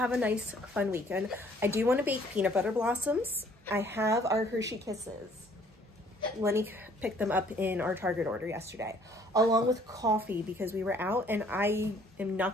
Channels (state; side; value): normal; both; correlation 0.59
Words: a nice fun weekend. I do want to bake peanut butter blossoms. I have our Hershey Kisses. Lenny picked them up in our Target order yesterday, along with coffee because we were out, and I am